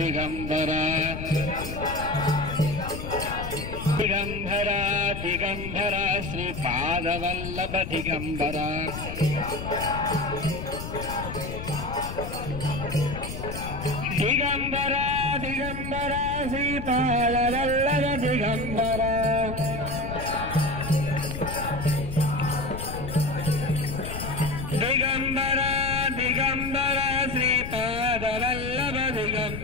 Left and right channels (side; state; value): left; noise; rumble, 7 dB below the sound